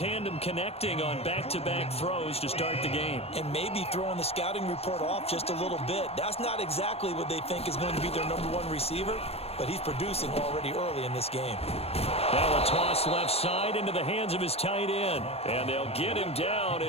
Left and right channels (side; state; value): right; late; 0.29 ms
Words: connecting on back-to-back throws to start the game. And maybe throwing the scouting report off just a little bit. That's not exactly what they think is going to be their #1 receiver, but he's producing already early in this game. Now a toss left side into the hands of his tight end. And they'll get him down